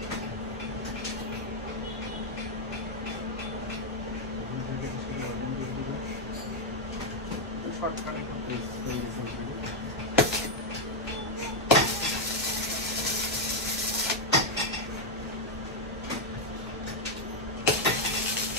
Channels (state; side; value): normal; both; correlation 0.01